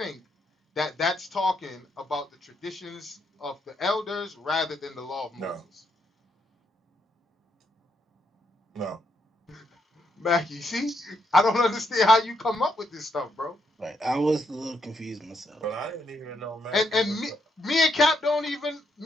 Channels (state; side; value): normal; both; correlation 0.77